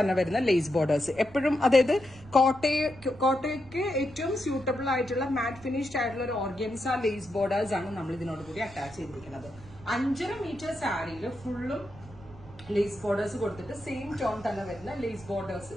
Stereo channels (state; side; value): noise; right; rumble, 20 dB below the sound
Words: വരുന്ന ലേസ് ബോർഡേഴ്സ് എപ്പോഴും, അതായത് കോട്ടയ്ക്ക് ഏറ്റവും സ്യൂട്ടബിൾ ആയിട്ടുള്ള മാറ്റ് ഫിനിഷ്ഡ് ആയിട്ടുള്ള ഒരു ഓർഗൻസ ലേസ് ബോർഡേഴ്സ് ആണ് നമ്മൾ ഇതിനോട് കൂടി അറ്റാച്ച് ചെയ്തിരിക്കുന്നത്. 5.5 മീറ്റർ സാരിയിൽ ഫുള്ളും ലേസ് ബോർഡേഴ്സ് കൊടുത്തിട്ട് സെയിം ടോൺ തന്നെ വരുന്ന ലേസ് ബോർഡേഴ്സ്